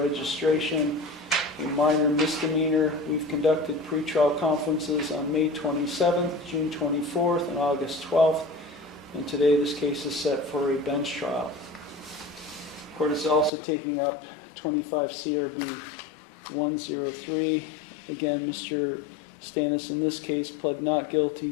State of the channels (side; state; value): right; drops out; at 13.5 s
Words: a minor misdemeanor. We've conducted pretrial conferences on May 27th, June 24th, and August 12th, and today this case is set for a bench trial. Court is also taking up 25 CRB 103. Again, Mr. Stannis in this case pled not guilty